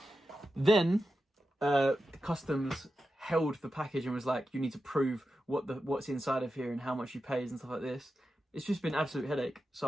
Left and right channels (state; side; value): normal; both; correlation 0.90